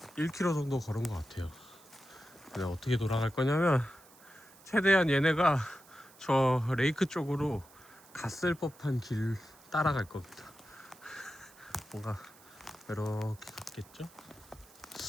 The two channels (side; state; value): right; noise; hiss, 24 dB below the sound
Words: 1km 정도 걸은 것 같아요. 근데 어떻게 돌아갈 거냐면, 최대한 얘네가 저 레이크 쪽으로 갔을 법한 길 따라갈 겁니다. 뭔가 이렇게 갔겠죠?